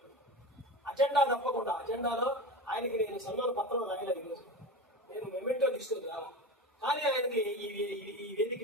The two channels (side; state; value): both; normal; correlation 0.28